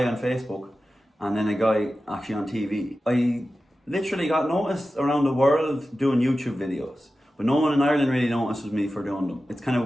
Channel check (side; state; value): both; normal; correlation 0.94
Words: on Facebook and then a guy actually on TV. I literally got noticed around the world doing YouTube videos, but no one in Ireland really notices me for doing them. It's kind of